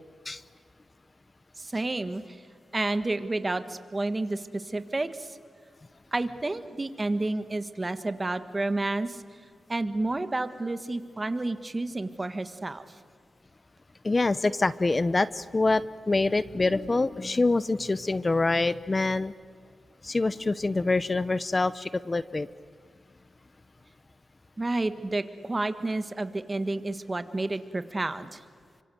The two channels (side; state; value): both; normal; correlation 0.96